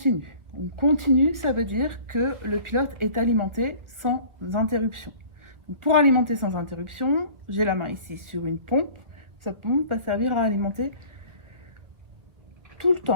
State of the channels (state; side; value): late; left; 2.0 ms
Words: Donc, continu, ça veut dire que le pilote est alimenté sans interruption. Donc, pour alimenter sans interruption, j'ai la main ici sur une pompe. Sa pompe va servir à alimenter tout le